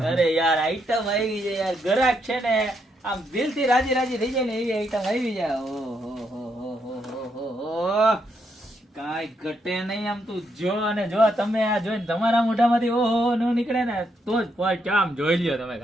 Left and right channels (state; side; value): normal; both; correlation 0.77